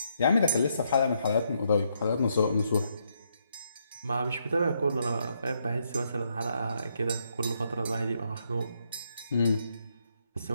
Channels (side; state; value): both; inverted; correlation -0.76